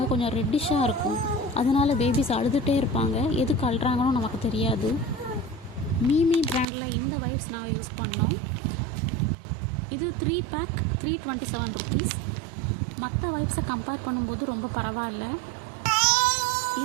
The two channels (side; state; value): left; drops out; at 6.7 s